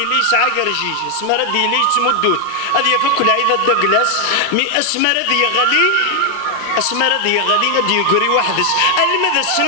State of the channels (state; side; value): different; both; correlation 0.00